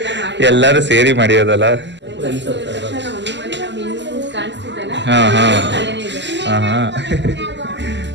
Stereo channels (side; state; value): left; late; 0.52 ms